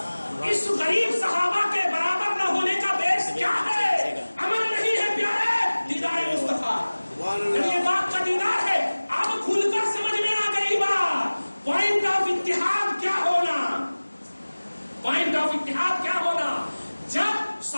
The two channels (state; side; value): inverted; both; correlation -1.00